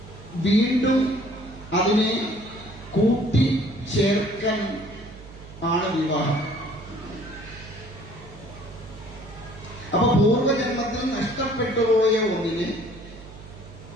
വീണ്ടും അതിനെ കൂട്ടി ചേർക്കാൻ ആണ് വിവാഹം. അപ്പൊ പൂർവജന്മത്തിൽ നഷ്ടപ്പെട്ടുപോയ ഒന്നിനെ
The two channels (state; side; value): noise; right; hum, 17 dB below the sound